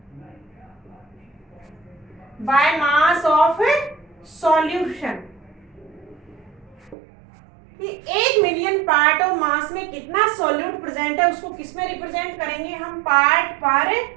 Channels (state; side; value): drops out; left; at 7.0 s